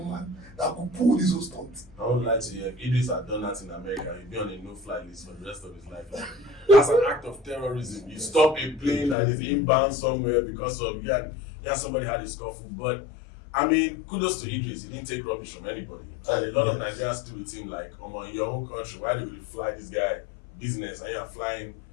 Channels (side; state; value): right; drops out; at 9.2 s